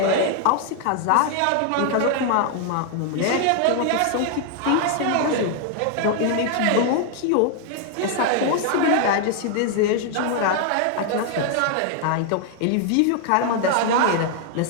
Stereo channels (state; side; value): different; both; correlation 0.00